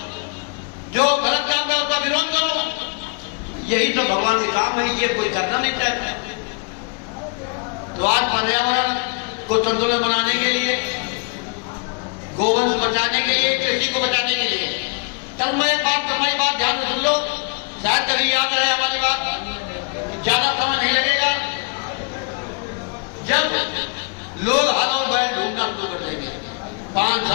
जो गलत काम है उसका विरोध करो। यही तो भगवान के काम है, ये कोई करना नहीं चाहता। तो आज पर्यावरण को संतुलन बनाने के लिए, गोवंश बचाने के लिए, कृषि को बचाने के लिए, तन्मय बात ध्यान सुन लो, शायद कभी याद रहे हमारी बात। ज्यादा समय नहीं लगेगा, जब लोग हल और बैल ढूंढना शुरू कर देंगे 5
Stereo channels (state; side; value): quieter; right; 33.1 dB